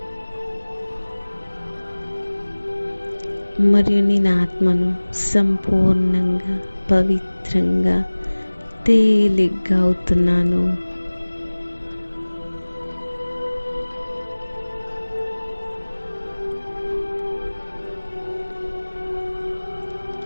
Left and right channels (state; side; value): inverted; both; correlation -1.00